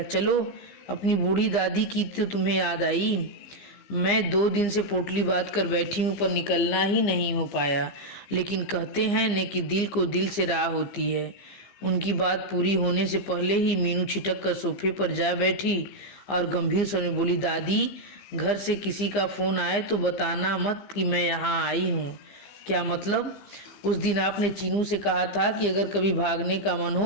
चलो, अपनी बूढ़ी दादी की तो तुम्हें याद आई? मैं 2 दिन से पोटली बांध कर बैठी हूँ, पर निकलना ही नहीं हो पाया। लेकिन कहते हैं न कि दिल को दिल से राह होती है। उनकी बात पूरी होने से पहले ही मीनू छिटक कर सोफे पर जा बैठी और गंभीर स्वर में बोली, दादी, घर से किसी का फोन आए तो बताना मत कि मैं यहाँ आई हूँ। क्या मतलब? उस दिन आपने चीनू से कहा था कि अगर कभी भागने का मन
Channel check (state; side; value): late; right; 15 ms